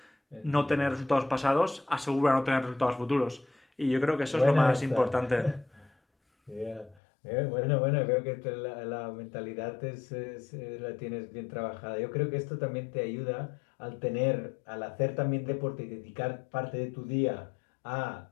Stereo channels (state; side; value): drops out; right; at 7.0 s